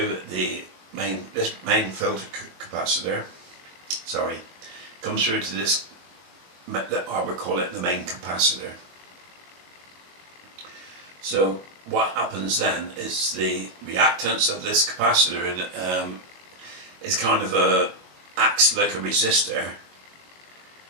this main filter capacitor. Sorry, comes through to this. I would call it the main capacitor. So what happens then is the reactance of this capacitor is kind of acts like a resistor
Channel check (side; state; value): left; late; 22 ms